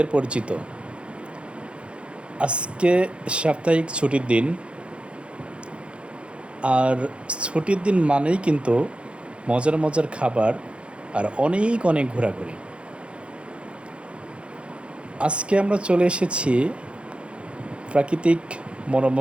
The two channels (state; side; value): late; left; 0.058 ms